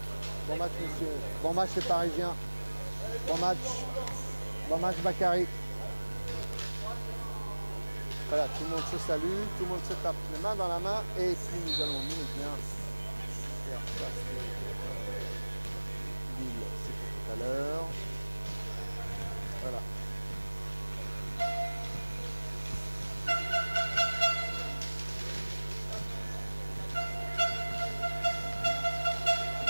Bon match, messieurs. Bon match, les Parisiens. Bon match. Bon match, Bakary. Voilà, tout le monde se salue, tout le monde se tape les mains dans la main. Et puis nous allons, nous, eh bien, faire ça, c'est Lille, c'est pour tout à l'heure. Voilà.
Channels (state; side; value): inverted; both; correlation -1.00